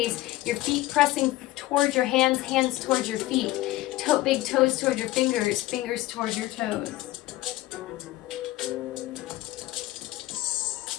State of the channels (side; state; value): right; quieter; 17.1 dB